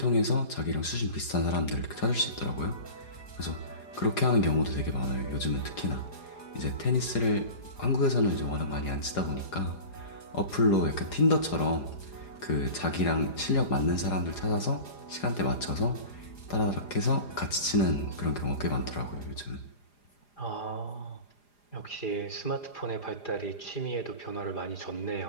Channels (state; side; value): late; right; 4.9 ms